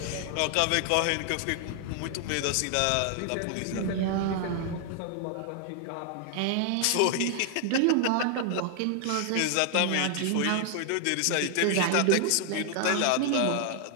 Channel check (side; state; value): both; different; correlation 0.00